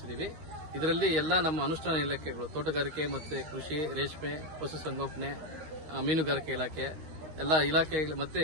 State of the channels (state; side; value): late; left; 13 ms